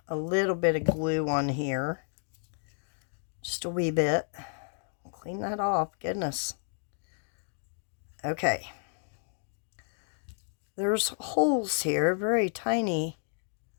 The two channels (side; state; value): right; silent; digital silence